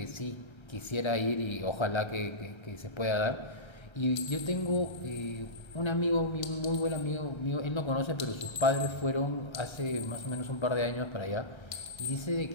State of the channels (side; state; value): right; late; 1.3 ms